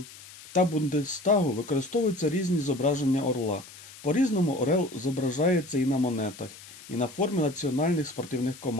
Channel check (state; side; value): noise; left; hiss, 18 dB below the sound